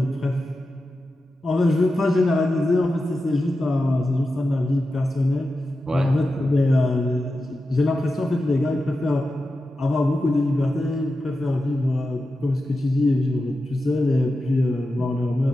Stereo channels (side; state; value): both; normal; correlation 0.91